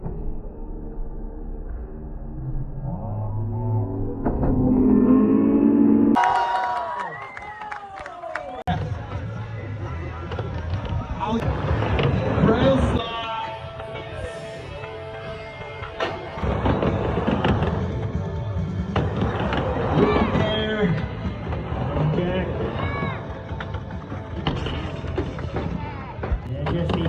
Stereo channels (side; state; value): both; identical; correlation 1.00